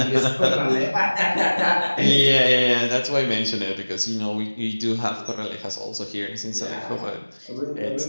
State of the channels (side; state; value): both; inverted; correlation -1.00